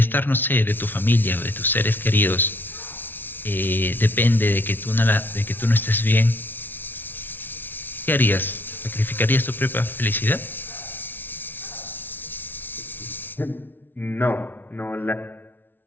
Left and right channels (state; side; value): late; right; 0.096 ms